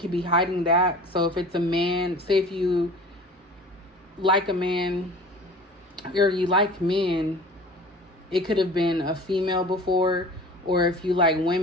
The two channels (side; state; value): both; normal; correlation 0.42